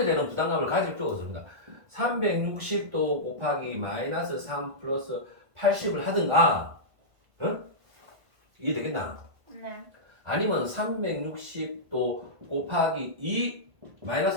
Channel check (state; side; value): late; left; 1.5 ms